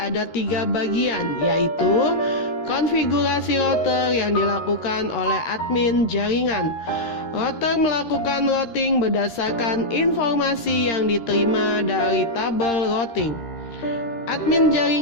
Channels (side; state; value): right; late; 13 ms